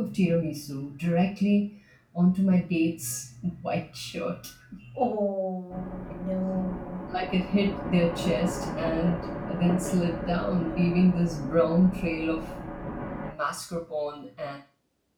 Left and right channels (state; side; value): identical; both; correlation 1.00